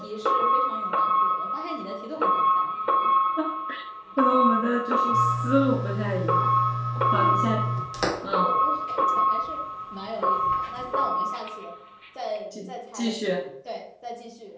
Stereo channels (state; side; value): identical; both; correlation 1.00